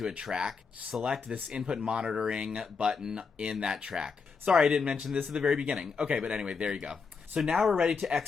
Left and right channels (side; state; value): right; quieter; 5.2 dB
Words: a track, select this input monitoring button in that track. Sorry, I didn't mention this at the very beginning. Okay, but anyway, there you go. So now we're ready to